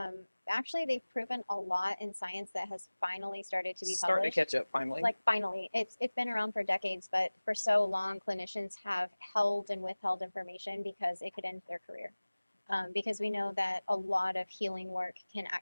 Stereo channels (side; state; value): both; inverted; correlation -1.00